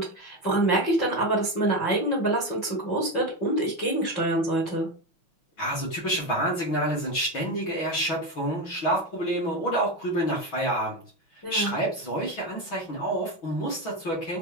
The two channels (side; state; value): right; late; 6.1 ms